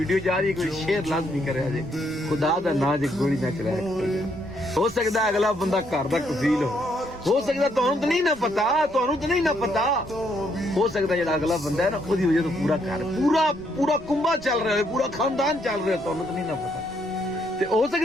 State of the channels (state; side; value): noise; right; rumble, 22 dB below the sound